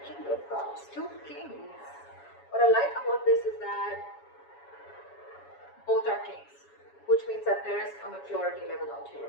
King of Cups, two kings. What I like about this is that both are kings, which means that there is a maturity level out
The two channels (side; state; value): right; late; 7.1 ms